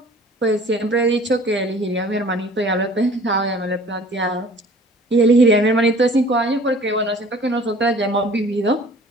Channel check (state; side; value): normal; both; correlation 0.49